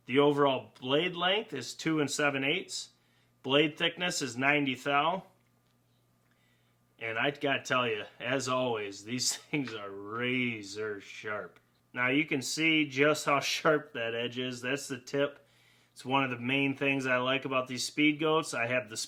The overall blade length is 2 7/8. Blade thickness is 90 thou. And I gotta tell you, as always, these things are razor sharp. Now you can see just how sharp that edge is. That's the tip. It's one of the main things I like about these Speedgoats. I have the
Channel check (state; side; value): identical; both; correlation 1.00